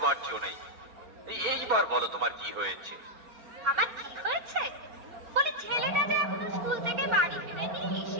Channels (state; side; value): late; left; 4.4 ms